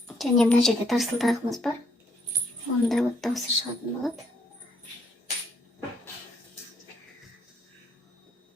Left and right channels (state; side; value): normal; both; correlation 0.70